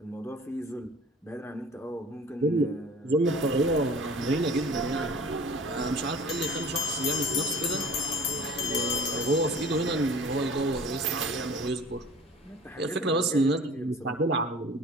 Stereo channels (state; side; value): normal; both; correlation 0.45